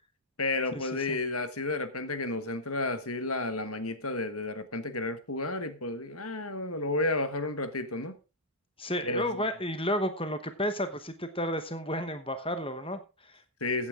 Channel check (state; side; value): normal; both; correlation -0.07